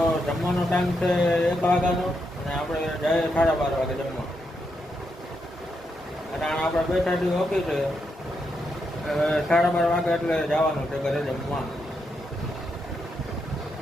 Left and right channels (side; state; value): both; normal; correlation 0.82